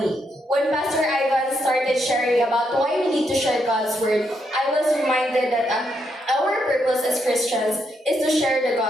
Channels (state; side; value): normal; both; correlation 0.78